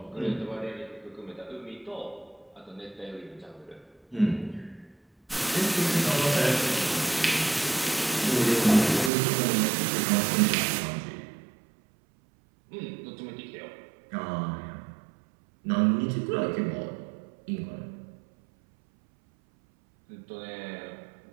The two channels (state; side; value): drops out; left; at 9.1 s